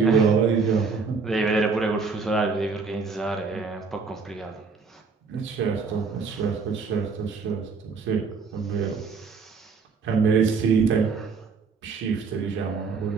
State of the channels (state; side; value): quieter; left; 4.9 dB